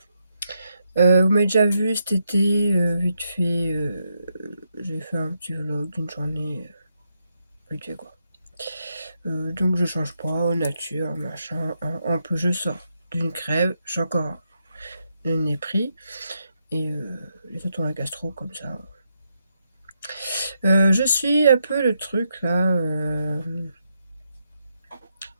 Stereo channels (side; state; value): both; inverted; correlation -0.81